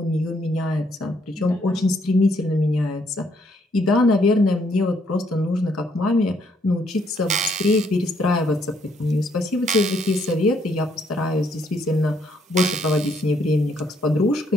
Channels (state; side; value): normal; both; correlation 0.70